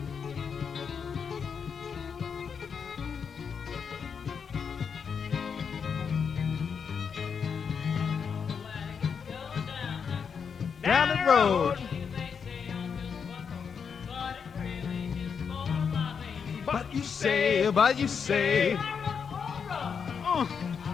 Down the road. But you say,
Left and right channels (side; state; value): right; quieter; 6.5 dB